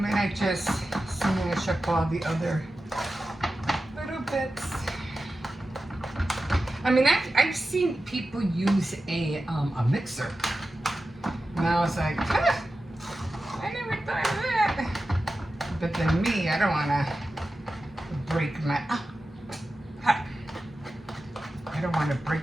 I just smash up all the other little bits. I mean, I've seen people use a mixer. And I was like, huh, I never thought of that. But then me, I don't want to break my, I don't want to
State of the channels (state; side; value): normal; both; correlation 0.93